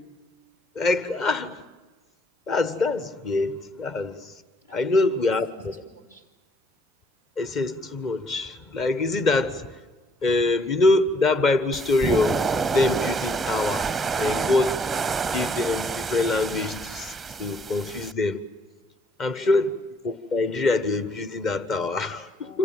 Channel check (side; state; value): both; normal; correlation 0.67